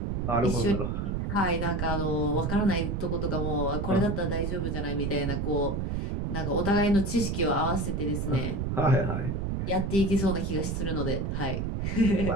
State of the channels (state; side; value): noise; right; rumble, 1 dB below the sound